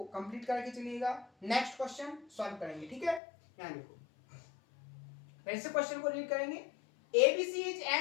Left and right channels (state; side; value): drops out; right; at 3.2 s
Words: कंप्लीट करके चलिएगा। नेक्स्ट क्वेश्चन सॉल्व करेंगे, ठीक है? यहां देखो, फिर से क्वेश्चन को रीड करेंगे। ABC is